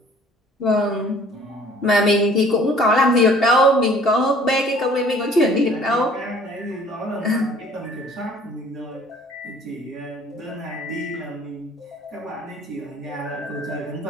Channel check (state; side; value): normal; both; correlation 0.54